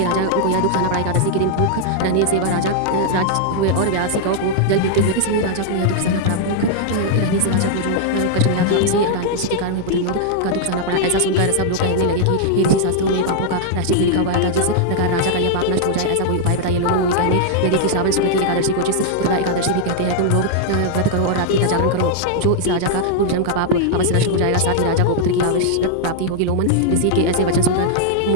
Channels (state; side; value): different; both; correlation -0.01